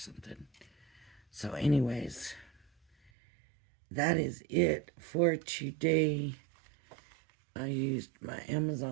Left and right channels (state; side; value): drops out; left; at 3.1 s